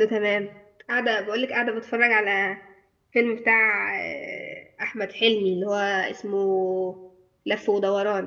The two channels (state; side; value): identical; both; correlation 1.00